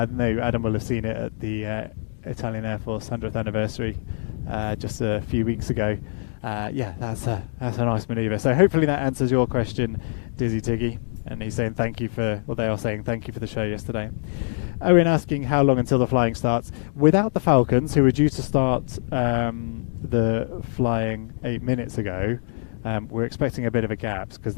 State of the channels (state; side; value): silent; right; digital silence